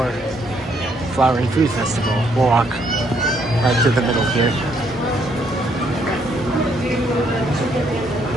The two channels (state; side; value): normal; both; correlation 0.70